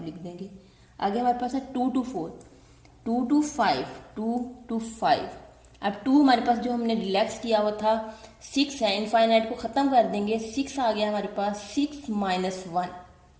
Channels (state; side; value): identical; both; correlation 1.00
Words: लिख देंगे। आगे हमारे पास है 2 to 4, 2 to 5, 2 to 5। अब 2 हमारे पास जो हमने रिलैक्स किया हुआ था 6 है, इनफाइनाइट को ख़त्म कर देंगे, 6 आ गया हमारे पास, 6 माइनस 1।